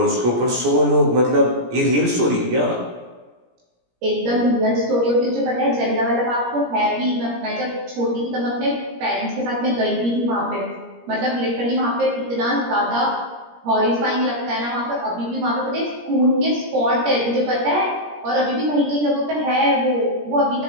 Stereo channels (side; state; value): left; late; 17 ms